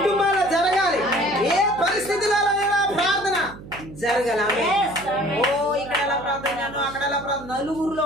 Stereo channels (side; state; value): right; noise; hum, 16 dB below the sound